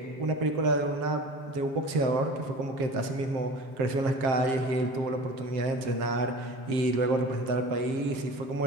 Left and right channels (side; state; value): left; late; 7.5 ms